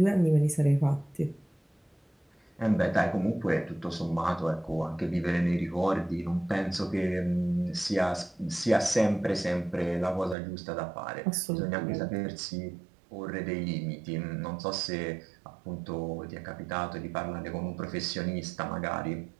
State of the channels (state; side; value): drops out; left; at 10.4 s